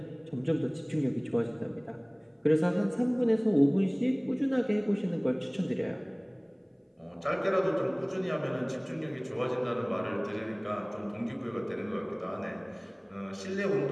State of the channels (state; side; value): identical; both; correlation 1.00